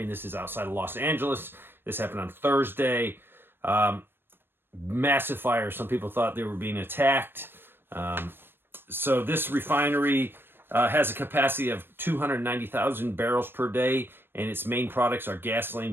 and this is outside of Los Angeles. This happened on Thursday. Massive fire. Some people thought they were being attacked. So this refinery has a capacity of 290,000 barrels per day, and its main products are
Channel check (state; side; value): late; left; 0.10 ms